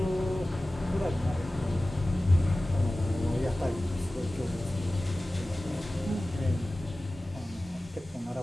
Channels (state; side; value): normal; both; correlation 0.96